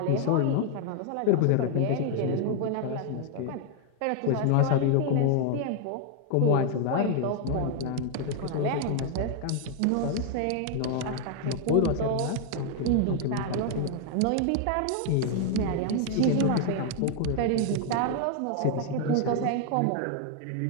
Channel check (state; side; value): different; both; correlation 0.00